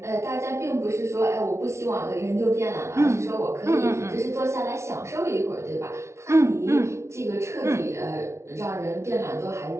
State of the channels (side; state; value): left; late; 0.13 ms